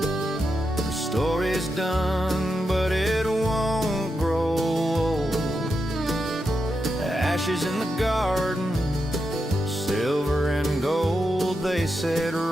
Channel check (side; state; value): both; normal; correlation 0.86